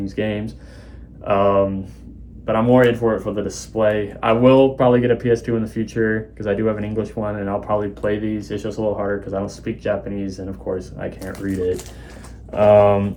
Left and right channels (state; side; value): identical; both; correlation 1.00